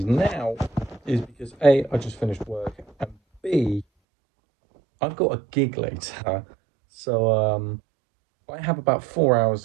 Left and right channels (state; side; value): drops out; left; at 3.9 s